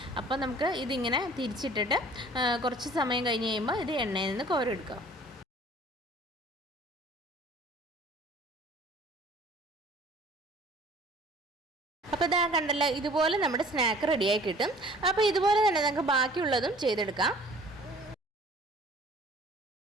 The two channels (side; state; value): both; normal; correlation 0.50